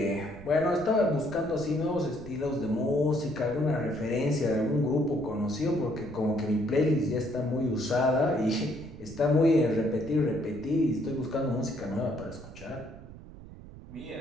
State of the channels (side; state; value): right; noise; rumble, 16 dB below the sound